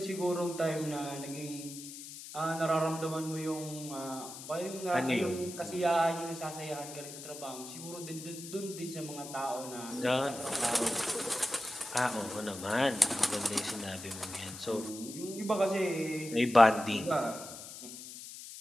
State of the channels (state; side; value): noise; left; hiss, 12 dB below the sound